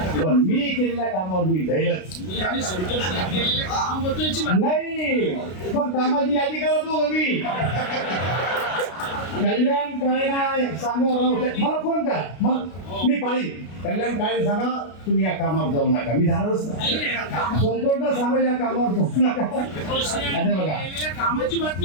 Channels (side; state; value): right; late; 33 ms